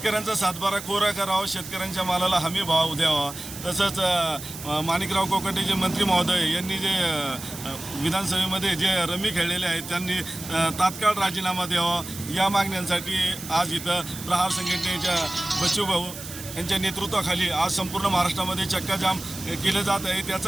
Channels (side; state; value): right; noise; hiss, 12 dB below the sound